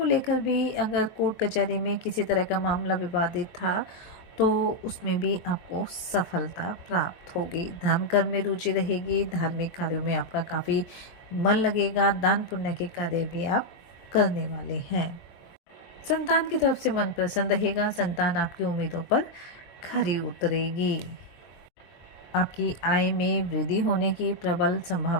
लेकर भी अगर कोर्ट कचहरी में किसी तरह का मामला विवादित था तो उसमें भी आपको सफलता प्राप्त होगी। धर्म कर्म में रुचि रहेगी, धार्मिक कार्यों में आपका काफ़ी मन लगेगा, दान पुण्य के कार्य भी आप करने वाले हैं। संतान की तरफ से मन प्रसन्न रहेगा, संतान आपकी उम्मीदों पर खरी उतरेगी। आपकी आय में वृद्धि होने की प्रबल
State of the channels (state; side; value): late; right; 23 ms